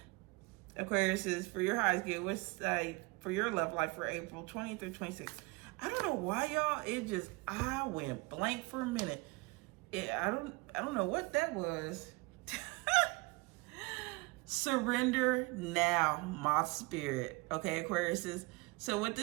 Aquarius is for your highs good. What's like for your love life for April 20th through 26th? I don't know why, y'all. I went blank for a minute. I don't know what that was. Surrender now, my spirit. Okay, Aquarius is. So what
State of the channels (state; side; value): quieter; left; 26.0 dB